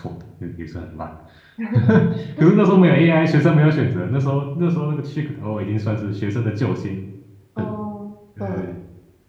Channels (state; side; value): identical; both; correlation 1.00